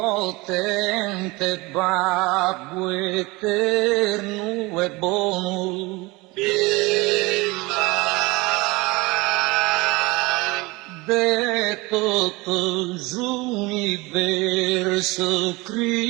potente babbo eterno e buono, de tutto l'universo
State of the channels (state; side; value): quieter; left; 23.6 dB